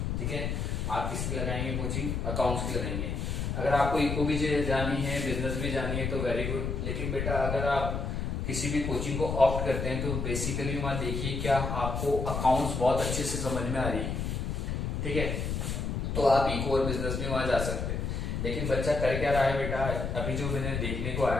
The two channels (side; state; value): left; noise; rumble, 2 dB below the sound